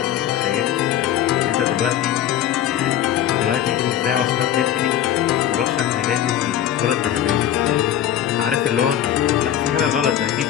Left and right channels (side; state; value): right; quieter; 11.0 dB